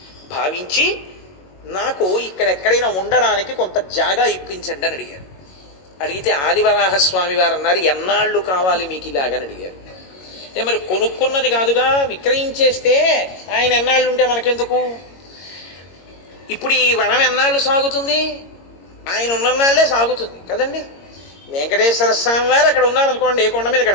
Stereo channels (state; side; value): late; right; 22 ms